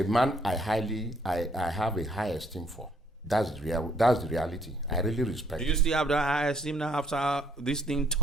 man I have a high esteem for. That's the reality. I really respect. Do you still have the high esteem now after this thing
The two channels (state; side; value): normal; both; correlation 0.67